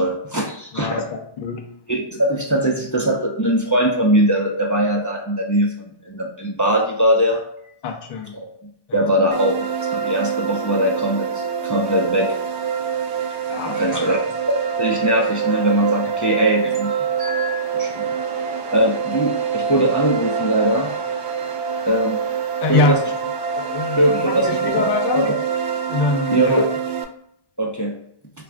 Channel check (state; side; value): late; right; 1.1 ms